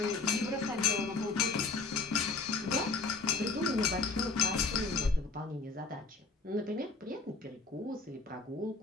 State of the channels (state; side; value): quieter; right; 4.1 dB